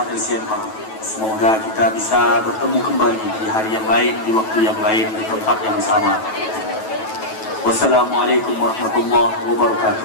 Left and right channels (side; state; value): right; late; 9.2 ms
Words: LCMA. Semoga kita bisa bertemu kembali di hari yang lain, di waktu yang lain, di tempat yang sama. Wassalamualaikum warahmatullahi